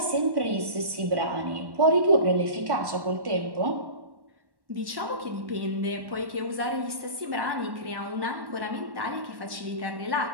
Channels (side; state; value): left; late; 1.1 ms